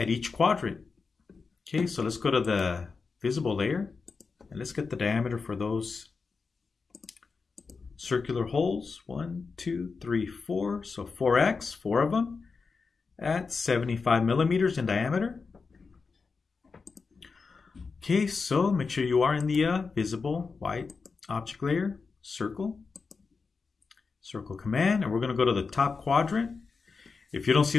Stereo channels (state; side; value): quieter; right; 4.8 dB